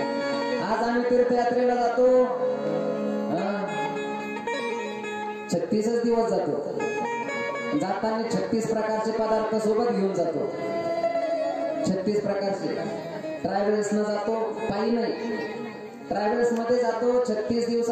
आज आम्ही तीर्थयात्रेला जातो 36 दिवस जातो. जाताना 36 प्रकारचे पदार्थ सोबत घेऊन जातो. 36 प्रकारचे. ट्रॅव्हल्स न जातो, पायी नाही, ट्रॅव्हल्स मध्ये जातो. 36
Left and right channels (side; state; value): both; identical; correlation 1.00